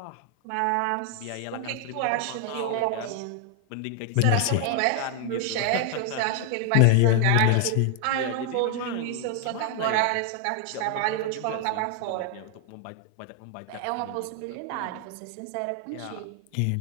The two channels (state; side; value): different; both; correlation 0.00